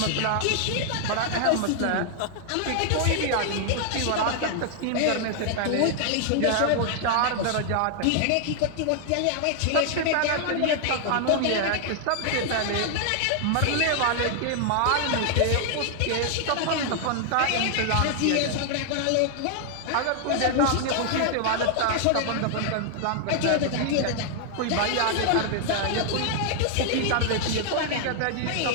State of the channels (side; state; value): both; different; correlation 0.00